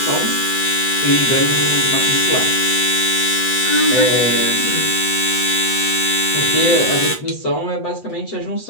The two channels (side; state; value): right; late; 8.1 ms